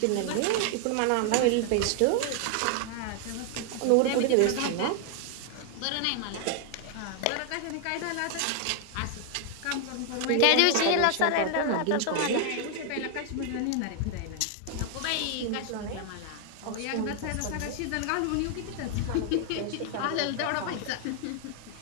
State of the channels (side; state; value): both; different; correlation 0.00